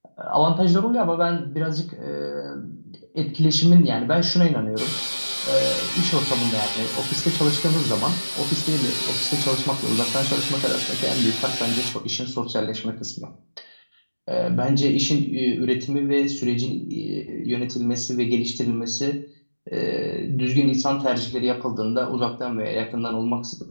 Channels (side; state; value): both; inverted; correlation -1.00